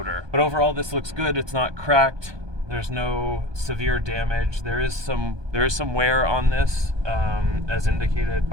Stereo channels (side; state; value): left; late; 1.2 ms